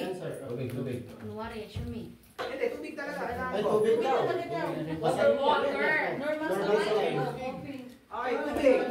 sir. Tubig. Hindi, tubig talaga. Kailangan Ay, ko. tubig daw. Basta yun. Water. Normal sa Normal sa life. life. Okay, tubig.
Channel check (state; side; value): identical; both; correlation 1.00